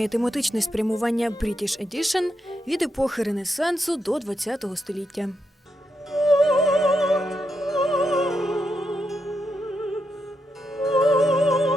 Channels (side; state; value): both; normal; correlation 0.83